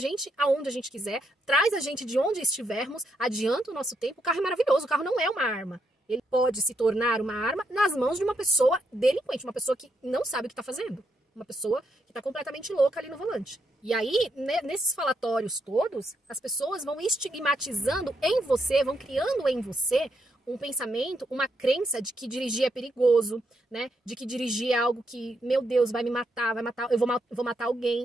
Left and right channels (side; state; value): both; normal; correlation 0.79